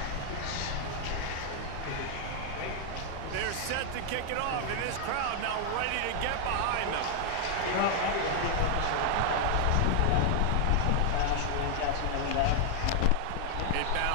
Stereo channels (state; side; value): different; both; correlation 0.00